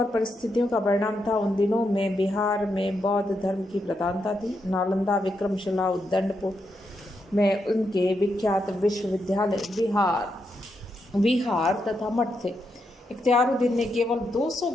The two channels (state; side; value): normal; both; correlation 0.83